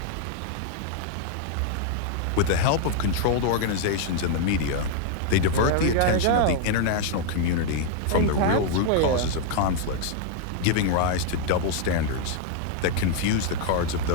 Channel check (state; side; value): different; both; correlation 0.00